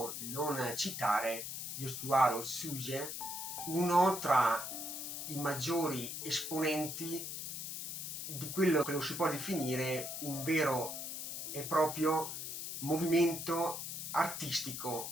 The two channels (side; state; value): left; noise; hiss, 5 dB below the sound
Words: non citare Yosuwaro Tsuge, uno tra i maggiori esponenti di quello che lo si può definire un vero e proprio movimento